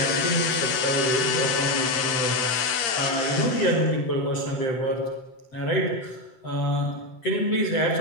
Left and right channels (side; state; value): right; late; 8.6 ms